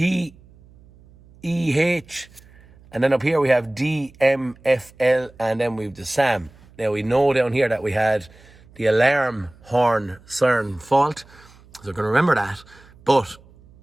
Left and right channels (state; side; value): noise; right; hum, 26 dB below the sound